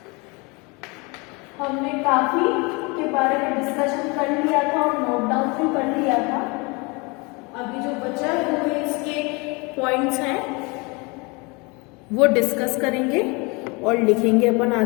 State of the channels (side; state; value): right; quieter; 28.1 dB